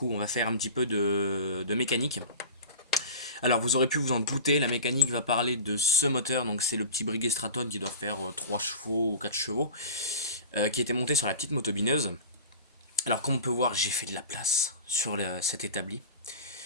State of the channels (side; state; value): both; inverted; correlation -0.35